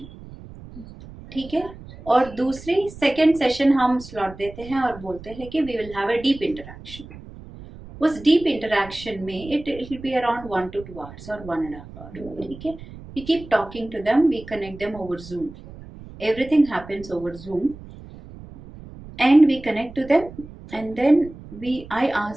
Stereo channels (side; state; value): right; noise; rumble, 16 dB below the sound